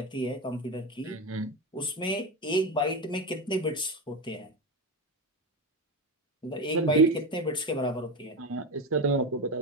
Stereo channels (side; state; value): both; normal; correlation 0.18